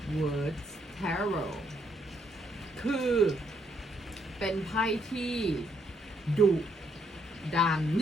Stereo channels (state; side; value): normal; both; correlation 0.73